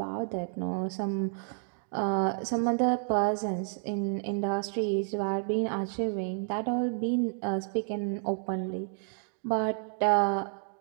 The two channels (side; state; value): left; silent; 58 dB below the other